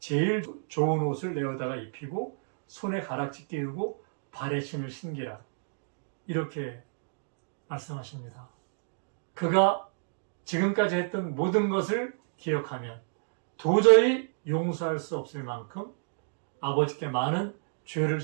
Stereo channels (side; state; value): left; silent; digital silence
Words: 좋은 옷을 내어다가 입히고 손에 가락지 끼우고 발에 신을 신기라. 이렇게 말씀하십니다. 그가 지금까지 했던 모든 것을 기억하면 도저히 용서할 수 없을 만큼 아버지께 많은 죄를